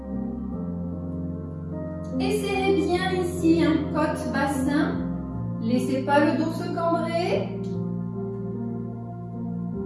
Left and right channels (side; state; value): both; identical; correlation 1.00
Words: Et serrez bien ici un côte bassin. Laissez pas le dos se cambrer.